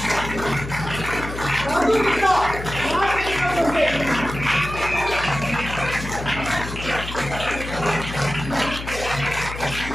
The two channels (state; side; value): noise; left; hum, 9 dB below the sound